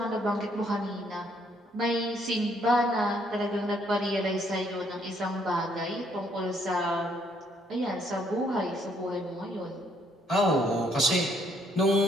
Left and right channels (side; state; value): both; normal; correlation 0.68